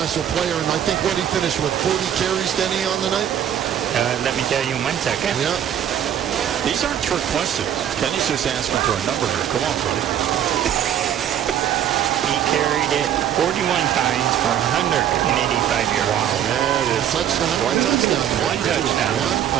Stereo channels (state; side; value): quieter; left; 10.1 dB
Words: player, and I think what he finished with 40 carries, Denny, on the night? Let me tell you in 1 second. Yeah. These aren't trick questions. Kenny's just asking for a number here. Come on, buddy. He carried it 41 times for 185 yards. Wow, that is touchdown. One touchdown. One touchdown.